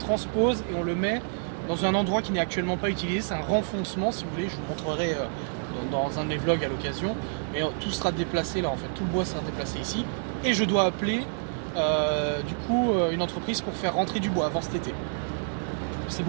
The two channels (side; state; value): left; silent; digital silence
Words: et on le met dans un endroit qui n'est actuellement pas utilisé, c'est un renfoncement si vous voulez, je vous montrerai dans un de mes vlogs à l'occasion, mais tout sera déplacé là en fait, tout le bois sera déplacé ici, et je dois appeler une entreprise pour faire rentrer du bois avant cet été. C'est